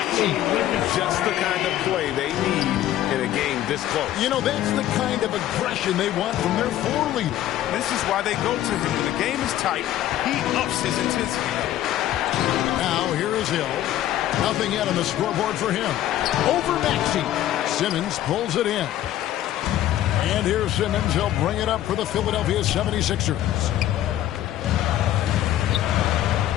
Just the kind of play they need in a game this close. You know, that's the kind of aggression they want from their floor leader. This is why they go to him. When the game is tight, he ups his intensity level. Now, here is Hill. Nothing yet on the scoreboard for him. Over Maxey. Simmons pulls it in. And here's Simmons. He'll bring it up for the Philadelphia 76ers.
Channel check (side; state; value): right; quieter; 12.9 dB